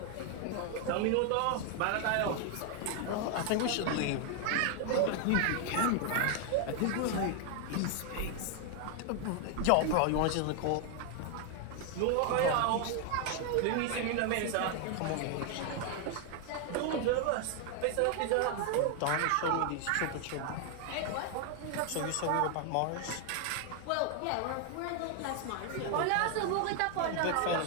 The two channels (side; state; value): both; different; correlation 0.00